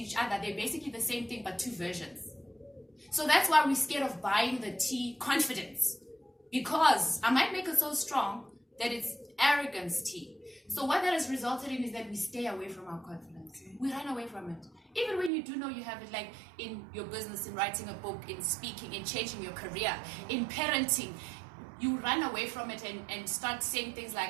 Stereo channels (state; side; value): drops out; left; at 15.3 s